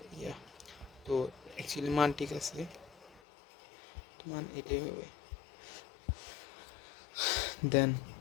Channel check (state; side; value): drops out; right; at 3.2 s